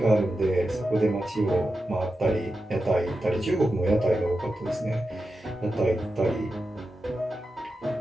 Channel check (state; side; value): normal; both; correlation 0.90